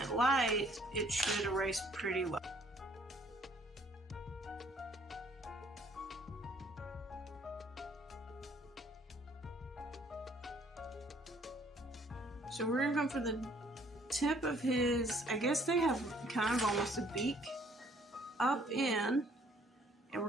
light, it should erase pretty well. So we're gonna go for the tip of his, I guess they have kind of almost a beak up in, and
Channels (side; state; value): both; normal; correlation 0.61